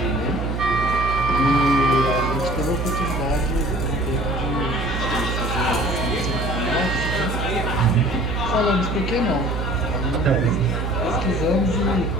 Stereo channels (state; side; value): noise; right; hum, 2 dB below the sound